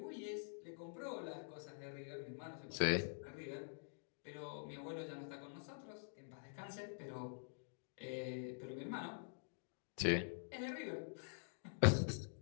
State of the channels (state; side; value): silent; right; digital silence